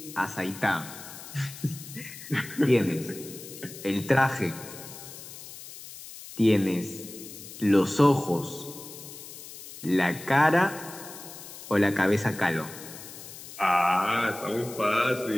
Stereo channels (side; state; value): left; noise; hiss, 14 dB below the sound